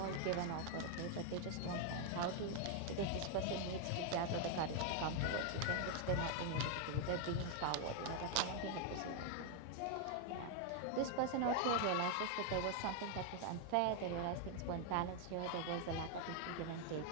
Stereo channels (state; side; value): different; both; correlation 0.01